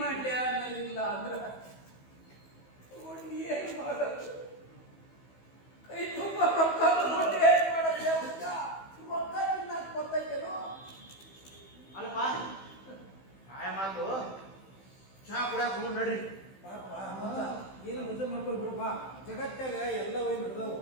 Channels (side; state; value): right; late; 15 ms